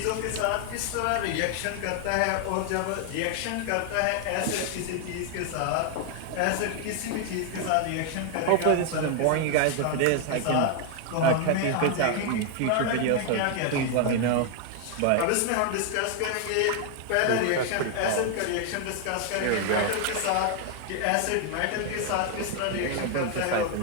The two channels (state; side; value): different; both; correlation 0.00